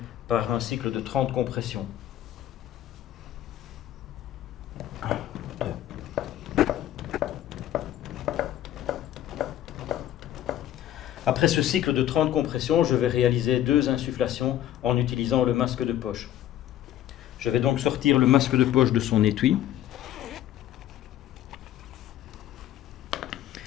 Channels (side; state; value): right; quieter; 12.4 dB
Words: par un cycle de 30 compressions. Après ce cycle de 30 compressions, je vais réaliser 2 insufflations en utilisant le masque de poche. Je vais donc sortir le masque de poche de son étui.